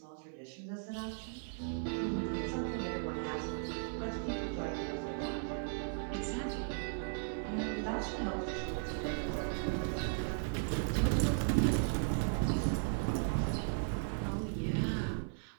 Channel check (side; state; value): left; silent; 53 dB below the other